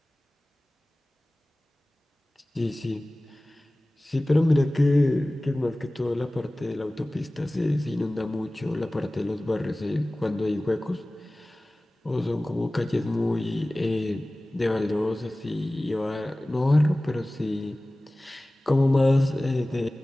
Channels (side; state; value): both; normal; correlation 0.98